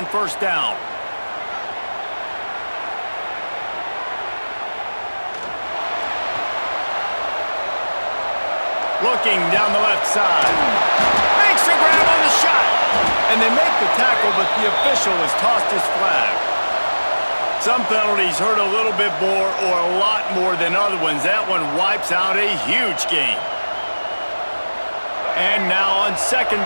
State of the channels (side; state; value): both; inverted; correlation -1.00